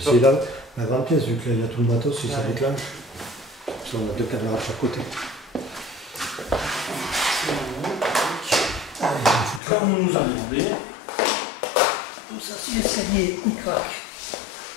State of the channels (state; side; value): drops out; right; at 9.6 s